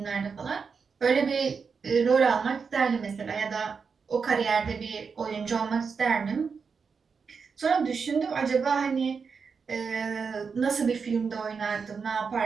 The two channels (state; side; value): quieter; left; 5.5 dB